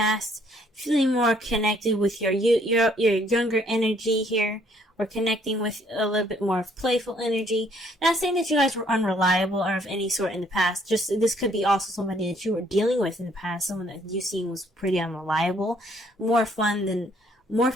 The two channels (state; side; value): normal; both; correlation 0.64